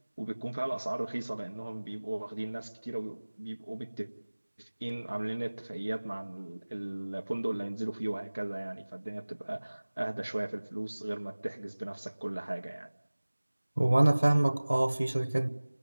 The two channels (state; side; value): inverted; both; correlation -1.00